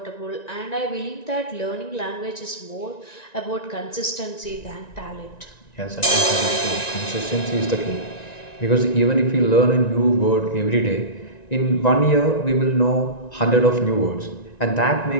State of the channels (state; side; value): late; right; 1.9 ms